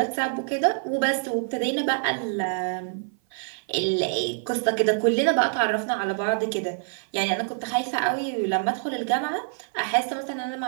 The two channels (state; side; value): silent; left; 55 dB below the other